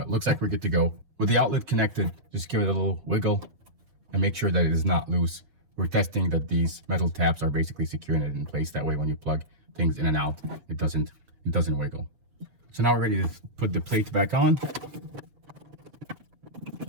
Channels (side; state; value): left; late; 7.0 ms